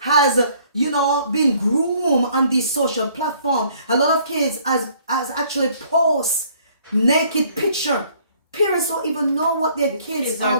been groomed on these social platforms. A lot of kids has actually post naked picture. Parents don't even know what their kids are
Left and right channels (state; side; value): inverted; both; correlation -0.60